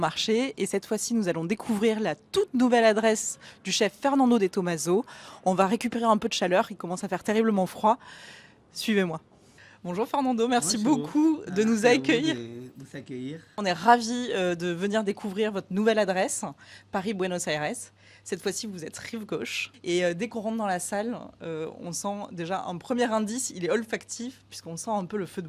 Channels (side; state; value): both; identical; correlation 1.00